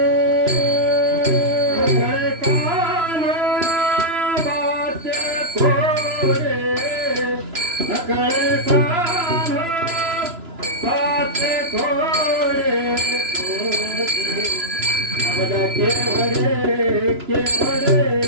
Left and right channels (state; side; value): late; left; 3.0 ms